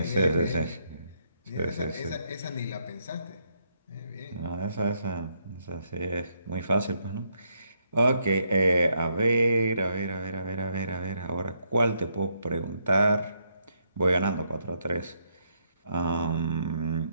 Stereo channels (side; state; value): both; inverted; correlation -0.76